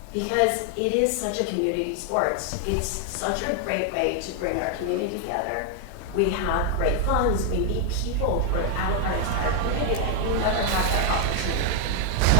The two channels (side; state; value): both; different; correlation 0.00